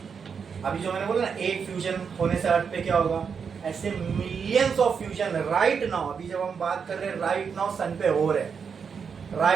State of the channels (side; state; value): left; quieter; 6.3 dB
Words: अभी जो मैंने बोला ना, एक फ्यूजन होने से अर्थ पे क्या होगा, ऐसे millions of fusion right now, अभी जब हम बात कर रहे हैं राइट नाउ सन पे हो रहे हैं,